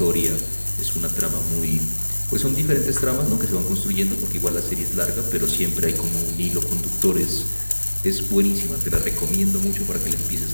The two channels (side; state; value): both; inverted; correlation -1.00